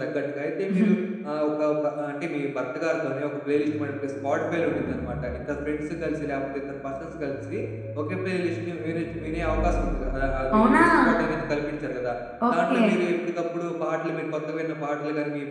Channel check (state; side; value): identical; both; correlation 1.00